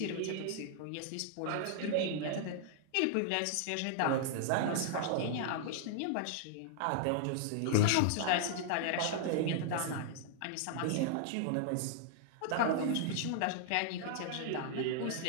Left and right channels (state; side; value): different; both; correlation -0.01